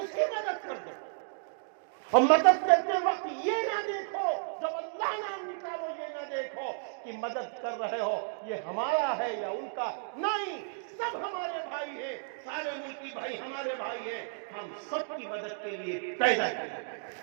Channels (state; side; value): silent; left; digital silence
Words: کی مدد کر دو۔ اور مدد کرتے وقت یہ نہ دیکھو، جب اللہ نام نکالو یہ نہ دیکھو کہ مدد کر رہے ہو یہ ہمارا ہے یا ان کا، نہیں، سب ہمارے بھائی ہیں، سارے ملکی بھائی ہمارے بھائی ہیں، ہم سب کی مدد کے لیے پیدا کیے۔